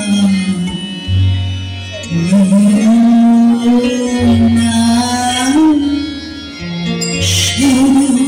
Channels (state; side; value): identical; both; correlation 1.00